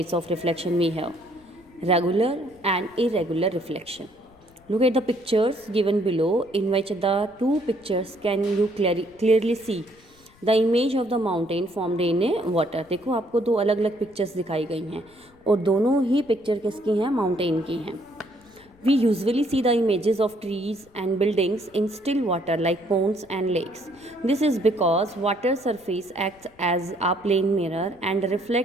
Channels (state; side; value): noise; left; rumble, 29 dB below the sound